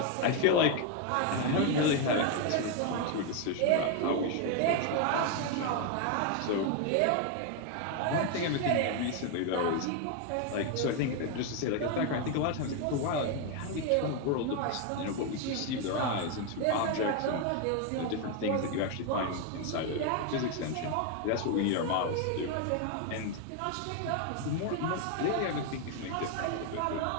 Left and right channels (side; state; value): both; different; correlation 0.01